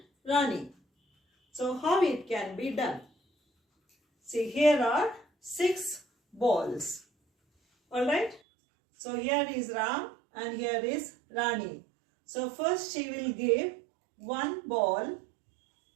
Rani. So how it can be done? See, here are 6 balls. Alright. So here is Ram and here is Rani. So first she will give 1 ball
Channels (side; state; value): left; drops out; at 8.4 s